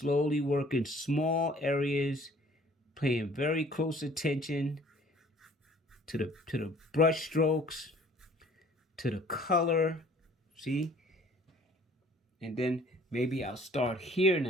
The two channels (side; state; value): both; normal; correlation 0.54